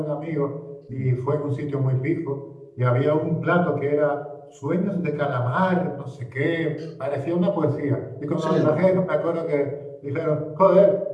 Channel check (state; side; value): identical; both; correlation 1.00